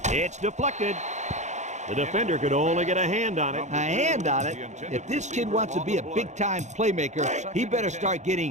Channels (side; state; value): left; late; 0.34 ms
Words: It's deflected. The defender could only get a hand on it. A hand on it? If this kid wants to be a big-time playmaker, he better start